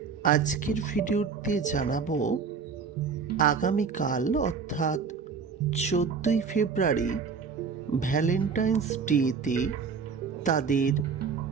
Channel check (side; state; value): left; quieter; 5.7 dB